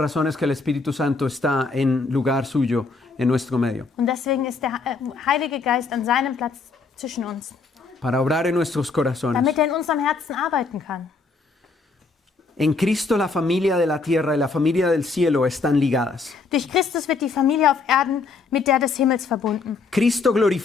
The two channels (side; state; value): right; quieter; 4.2 dB